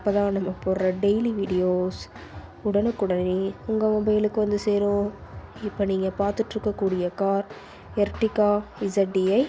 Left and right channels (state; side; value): identical; both; correlation 1.00